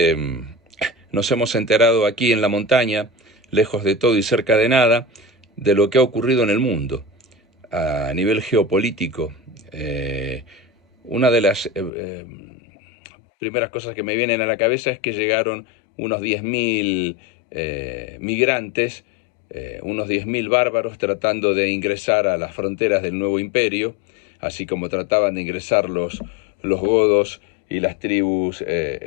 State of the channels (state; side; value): drops out; right; at 11.9 s